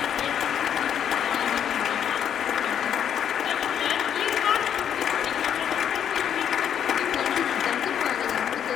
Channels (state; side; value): quieter; right; 9.0 dB